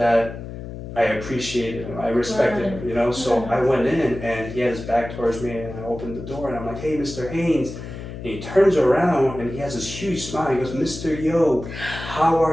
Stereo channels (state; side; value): noise; left; hum, 10 dB below the sound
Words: I appreciated him, I respected him, you know. So I went in and he had his back towards me, and I opened the door and I'm like, hey, Mr. Haynes. And he turns around and he has this huge smile. He goes, Mr. Yeo, how